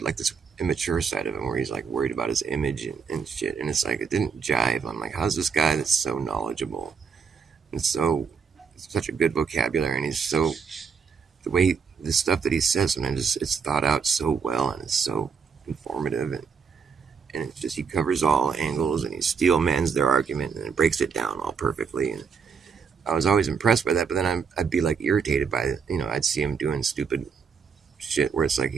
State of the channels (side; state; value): left; quieter; 6.0 dB